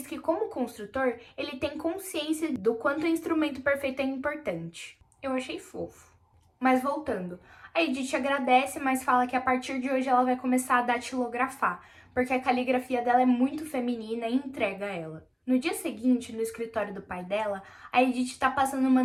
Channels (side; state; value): both; identical; correlation 1.00